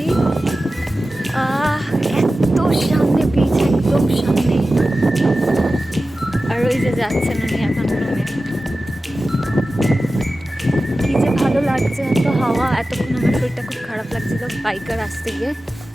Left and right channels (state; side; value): normal; both; correlation 0.94